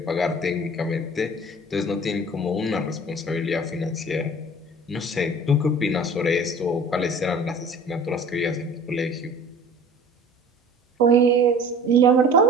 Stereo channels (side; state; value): both; normal; correlation 0.45